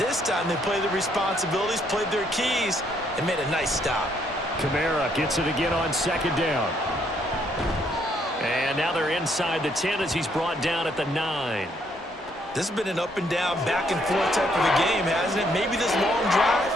time they played their responsibilities, played their keys, and made a nice stop. Kamara gets it again on second down. And now they're inside the 10 as he's brought down at the 9. This has been an up and down, back and forth type of a game, hasn't it? Maybe this long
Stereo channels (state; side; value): normal; both; correlation 0.70